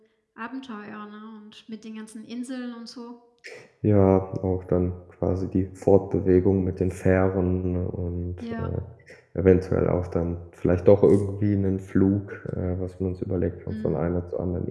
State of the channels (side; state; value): both; identical; correlation 1.00